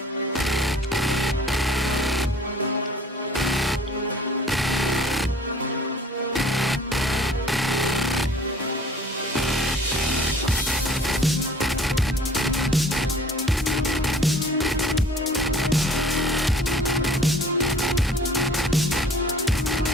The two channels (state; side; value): normal; both; correlation 0.51